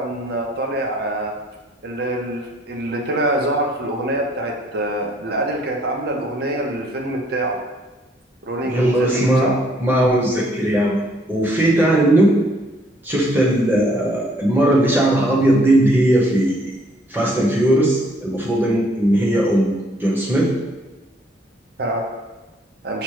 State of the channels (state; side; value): normal; both; correlation 0.65